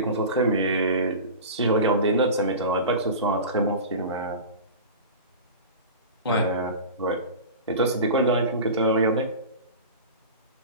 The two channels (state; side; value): inverted; both; correlation -0.32